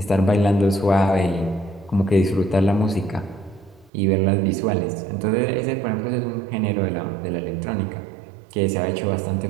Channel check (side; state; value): left; drops out; at 3.9 s